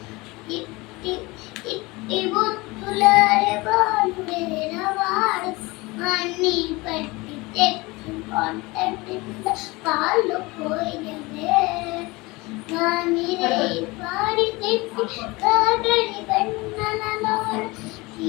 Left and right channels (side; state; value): right; quieter; 23.1 dB